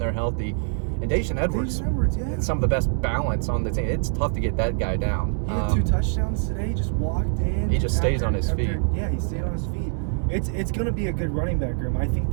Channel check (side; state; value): left; silent; 61 dB below the other